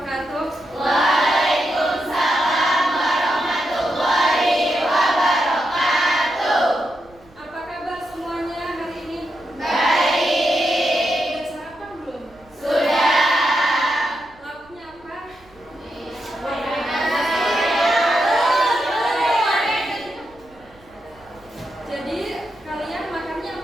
Waalaikumsalam warahmatullahi wabarakatuh. Apa kabar semuanya hari ini? Baik. Udah sarapan belum? Sudah. Lauknya apa? Jadi kalian makannya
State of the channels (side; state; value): right; noise; rumble, 28 dB below the sound